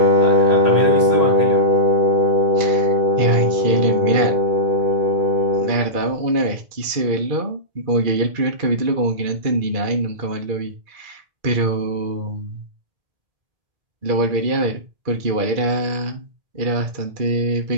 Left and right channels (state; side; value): late; left; 2.3 ms